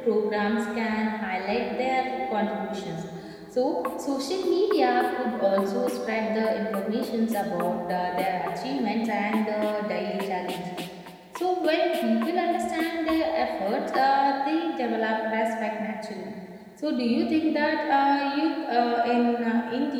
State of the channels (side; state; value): both; identical; correlation 1.00